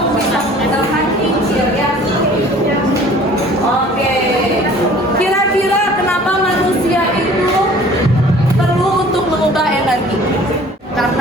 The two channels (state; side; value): normal; both; correlation 0.49